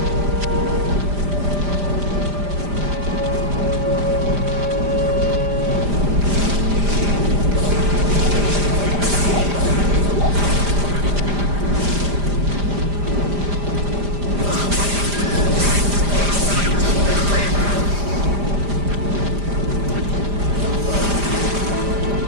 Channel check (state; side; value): late; left; 5.0 ms